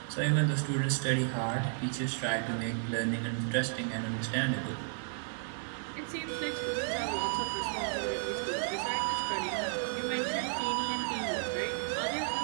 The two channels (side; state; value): left; silent; digital silence